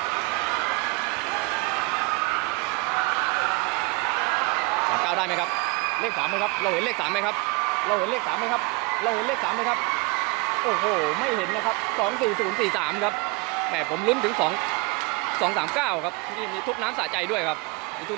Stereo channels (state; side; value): quieter; left; 27.0 dB